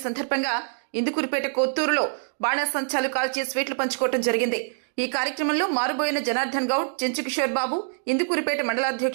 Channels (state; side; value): silent; left; digital silence